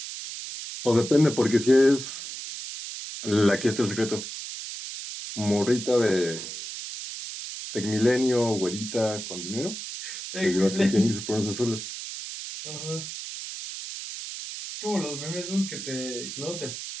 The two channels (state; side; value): noise; right; hiss, 8 dB below the sound